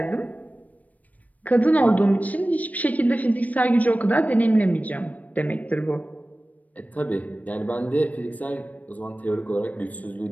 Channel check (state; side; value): late; right; 0.073 ms